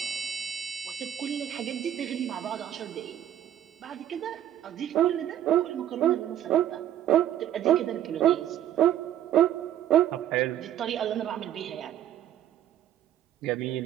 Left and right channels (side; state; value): left; quieter; 11.3 dB